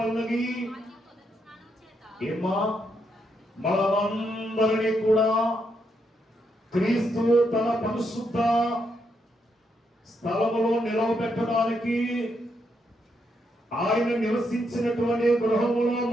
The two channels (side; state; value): both; normal; correlation 0.79